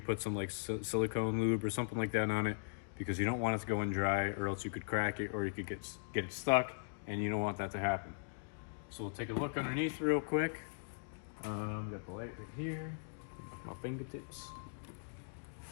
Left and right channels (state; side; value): silent; right; digital silence